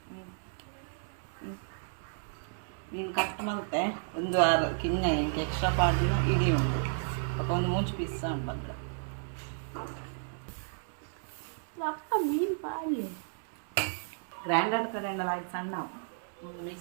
ನೀನು ಕಟ್ ಮತ್ತೆ ಒಂದು ವಾರ ಕಿನ್ನ ಎಂಟು ಎಕ್ಸ್ಟ್ರಾ ಪಾಡ್ದಿನ ಇಡೀ ಉಂಟು ಪಾಪ ಒಂದು 3 ಪೀಸ್ ಉಂಟು ಬಂದ್ರೆ ಅಪ್ಪ ಮೀನು ಪಾಡಿ ಗ್ರೈಂಡರ್ ಕಡೆಯಿಂದ ಆಯ್ತು ಸಣ್ಣ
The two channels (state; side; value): silent; left; 56 dB below the other